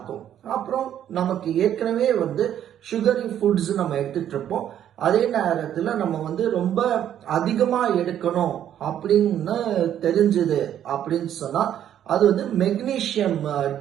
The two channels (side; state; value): left; quieter; 10.5 dB